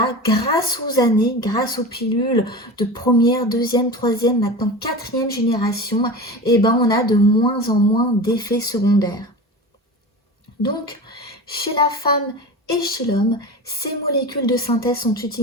grâce aux années, grâce aux pilules de première, deuxième, troisième, maintenant quatrième génération, et ben on a de moins en moins d'effets secondaires. Donc, chez la femme et chez l'homme, ces molécules de synthèse sont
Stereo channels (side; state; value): both; normal; correlation 0.30